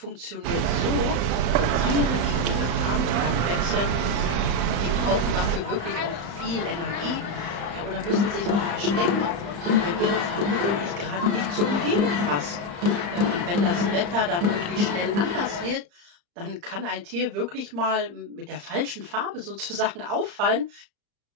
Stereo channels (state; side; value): late; left; 35 ms